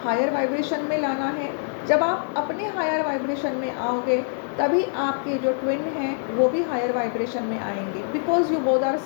हायर वाइब्रेशन में लाना है। जब आप अपने हायर वाइब्रेशन में आओगे तभी आपके जो ट्विन हैं वो भी हायर वाइब्रेशन में आएंगे, because you both are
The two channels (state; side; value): silent; right; digital silence